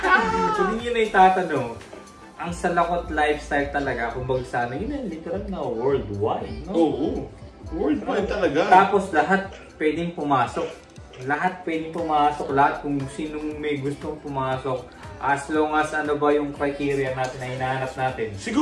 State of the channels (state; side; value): identical; both; correlation 1.00